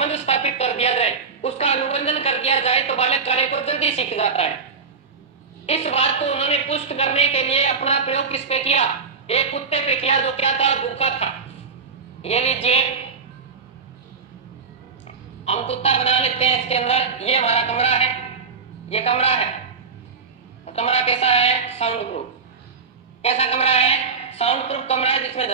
स्थापित कर दिया जाए, उसका अनुबंधन कर दिया जाए तो बालक कार्य को जल्दी सीख जाता है। इस बात को उन्होंने पुष्ट करने के लिए अपना प्रयोग किस पे किया? एक कुत्ते पे किया, जो क्या था? भूखा था। ये लीजिए, हम कुत्ता बना लेते हैं इसके अंदर। ये हमारा कमरा है, ये कमरा है। कमरा कैसा है? Sound proof. कैसा कमरा है? साउंड प्रूफ कमरा है, जिसमें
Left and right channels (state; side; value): quieter; left; 5.1 dB